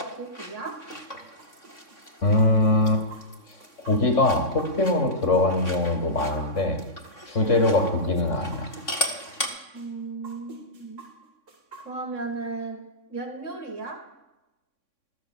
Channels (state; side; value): late; right; 3.6 ms